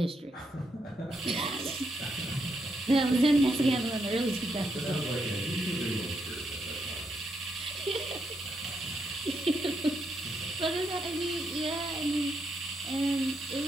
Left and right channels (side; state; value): both; normal; correlation 0.80